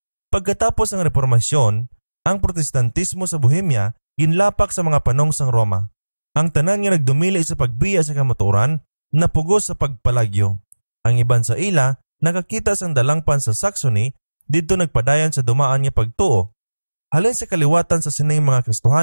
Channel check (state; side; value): inverted; both; correlation -1.00